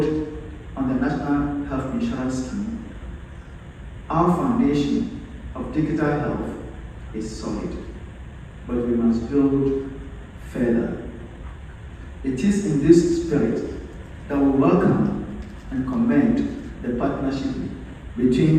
on the National Health Insurance Scheme, our foundation of digital health is solid, but we must build further. It is in this spirit that we welcome and commend the partnership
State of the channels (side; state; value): both; identical; correlation 1.00